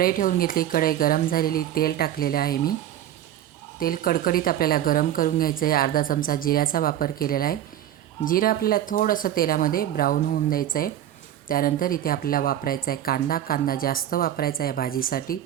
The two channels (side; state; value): left; quieter; 11.5 dB